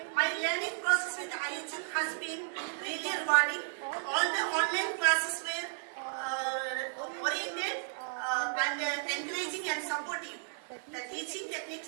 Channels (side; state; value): left; silent; 55 dB below the other